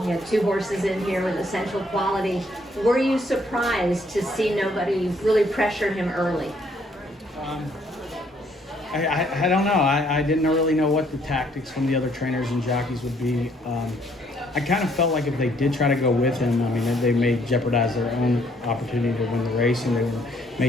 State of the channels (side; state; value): both; normal; correlation 0.67